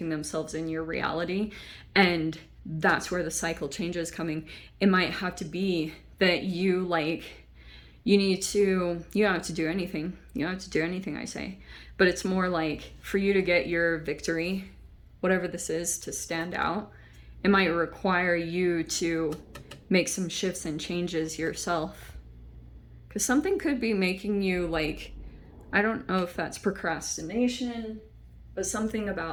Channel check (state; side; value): identical; both; correlation 1.00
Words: themselves in your reality, and that's where the cycle change is coming. It might have to be that you don't have to do anything. You don't have to do anything, I say. But it's more like for you to get your victory, whatever this is, to stand out, it might require you to make some shifts and changes yourself. Because something could be making you like, I don't know if that's procrastination, but something